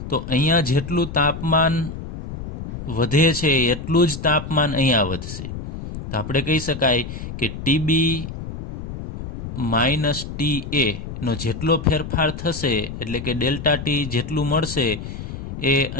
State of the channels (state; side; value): noise; left; rumble, 9 dB below the sound